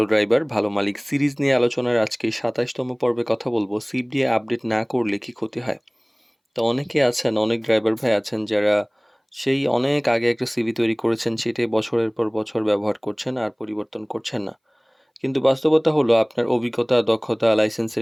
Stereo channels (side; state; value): both; identical; correlation 1.00